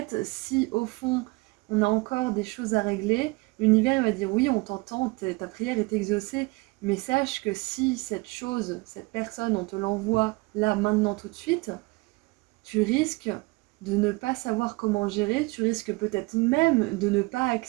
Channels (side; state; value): left; quieter; 24.9 dB